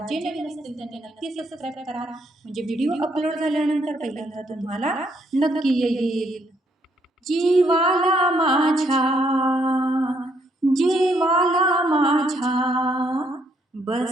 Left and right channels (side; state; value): both; normal; correlation 0.71